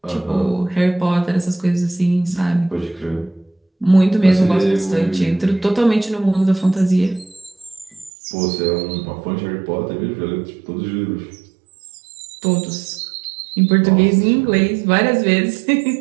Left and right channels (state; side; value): drops out; left; at 8.1 s